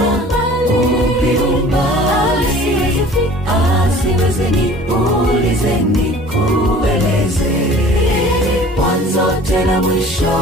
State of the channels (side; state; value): both; normal; correlation 0.47